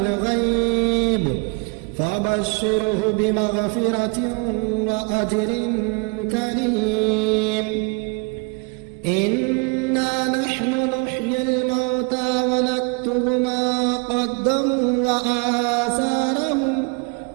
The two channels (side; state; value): left; quieter; 30.7 dB